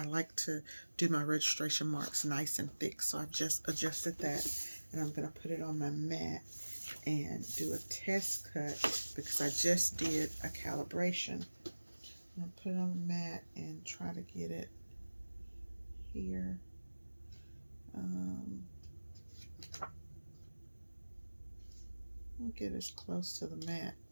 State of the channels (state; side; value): inverted; both; correlation -1.00